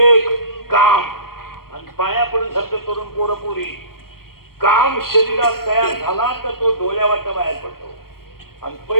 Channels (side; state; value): right; late; 0.93 ms